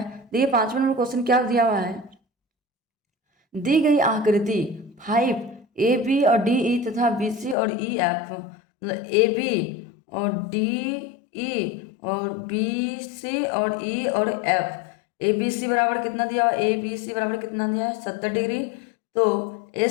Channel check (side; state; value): right; drops out; at 7.6 s